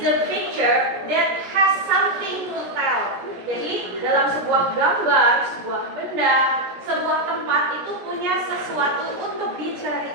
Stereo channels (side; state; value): left; late; 17 ms